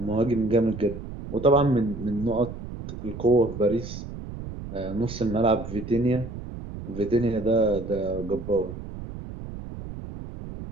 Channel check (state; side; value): noise; right; rumble, 10 dB below the sound